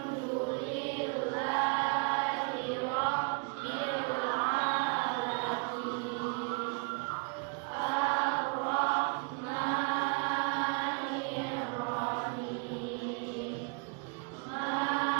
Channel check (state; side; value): quieter; left; 36.7 dB